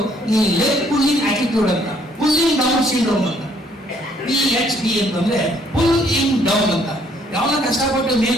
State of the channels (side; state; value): both; normal; correlation 0.65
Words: ಈ ಲೆಗ್ ಪುಲ್ಲಿಂಗ್ ಆಟಿಟ್ಯೂಡ್ ಅಂತ, ಪುಲ್ಲಿಂಗ್ ಡೌನ್ ಸಿಂಡ್ರೋಮ್ ಅಂತ. PhD ಅಂತಂದ್ರೆ ಪುಲ್ ಇನ್ ಡೌನ್ ಅಂತ. ಯಾವನ ಕಷ್ಟಪಟ್ಟು ಮೇಲೆ